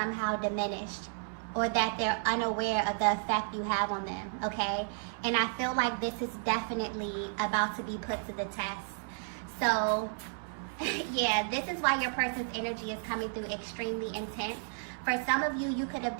diminished or that they're unaware of the effect you have on them, okay? And I feel like this is definitely about to be put to the test. So, yeah, this is why your person's energy is coming through extremely intense. For some of you, you could have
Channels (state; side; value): silent; left; 56 dB below the other